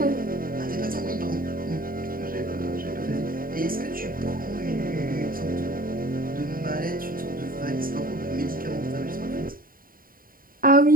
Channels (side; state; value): left; late; 0.41 ms